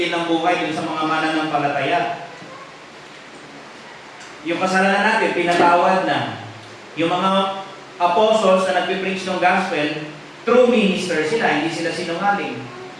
ng buhay dun sa mga mananampalataya. Yung kasalanan natin, pinatawad na. Yung mga apostles na nagpipreach ng gospel, true minister sila, hindi sila sinungaling.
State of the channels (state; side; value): identical; both; correlation 1.00